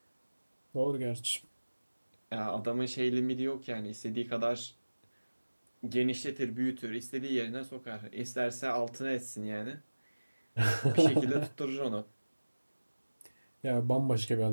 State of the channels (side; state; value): both; inverted; correlation -1.00